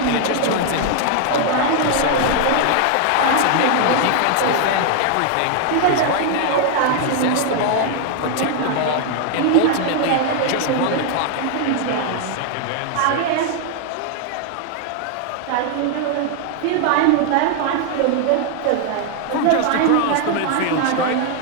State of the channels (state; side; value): different; both; correlation 0.00